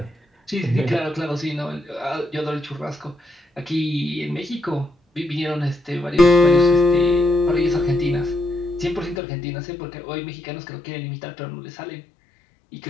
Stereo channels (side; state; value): right; drops out; at 9.2 s